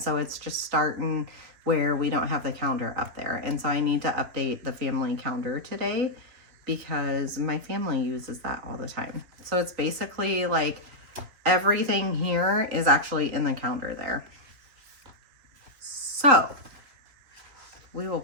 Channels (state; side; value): late; left; 3.4 ms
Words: so it's just starting where we don't have the calendar up there. And so I need to update the family calendar today because my family uses that all the time. So it's basically like everything here is actually in the calendar there. So we will